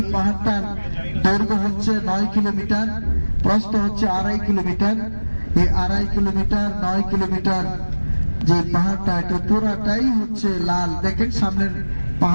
পাহাড়টার দৈর্ঘ্য হচ্ছে 9 কিলোমিটার, প্রস্থ হচ্ছে 2.5 কিলোমিটার। এই 2.5 কিলোমিটার 9 কিলোমিটার যে পাহাড়টা, এটা পুরাটাই হচ্ছে লাল। দেখেন সামনের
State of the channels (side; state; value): both; inverted; correlation -1.00